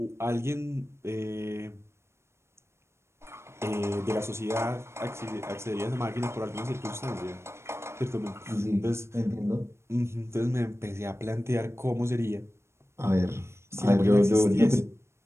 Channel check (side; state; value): left; late; 0.13 ms